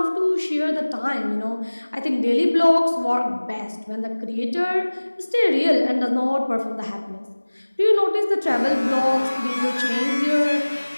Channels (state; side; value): inverted; both; correlation -1.00